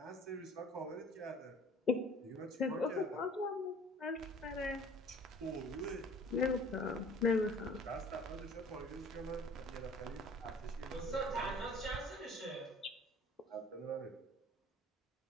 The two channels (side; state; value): both; normal; correlation 0.50